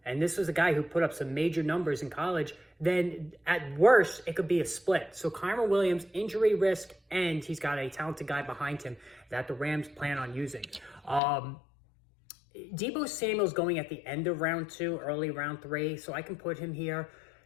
and this was a guy who put up some major numbers in college, then at worst, it could be a split. So Kyren Williams, injury risk, and he's got a talented guy behind him that the Rams plan on using. Deebo Samuel's going at the end of round two, early round three, so I can put him here.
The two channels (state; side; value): drops out; right; at 11.2 s